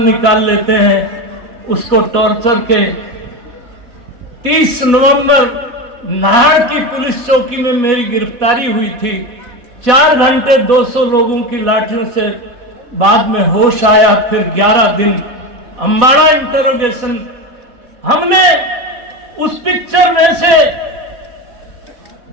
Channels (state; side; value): late; left; 4.1 ms